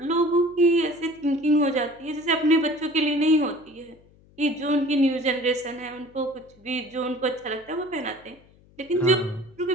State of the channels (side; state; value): left; noise; hum, 28 dB below the sound